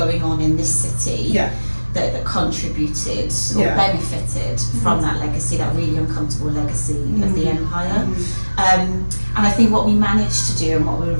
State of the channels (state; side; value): inverted; both; correlation -1.00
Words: on in this city. That contributed or benefited from that legacy, that really uncomfortable legacy of the empire. And I think what we managed to do and what we were